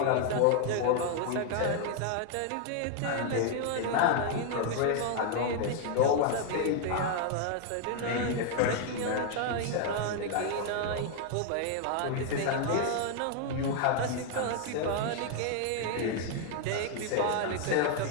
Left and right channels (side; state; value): both; different; correlation 0.00